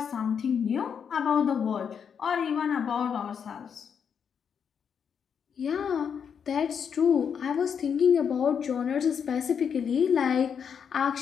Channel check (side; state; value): right; quieter; 7.2 dB